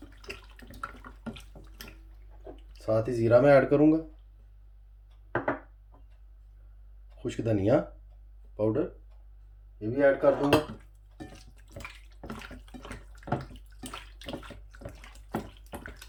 साथ ही ज़ीरा मैं ऐड करूँगा, खुश्क धनिया पाउडर ये भी ऐड कर दूँगा।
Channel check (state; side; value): identical; both; correlation 1.00